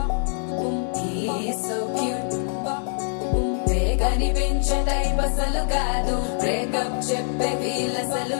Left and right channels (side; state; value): right; silent; digital silence